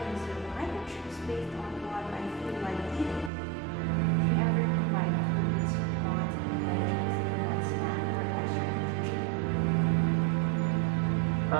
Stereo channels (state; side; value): drops out; left; at 3.3 s